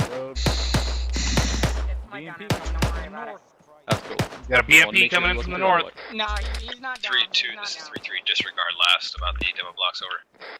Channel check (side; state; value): both; identical; correlation 1.00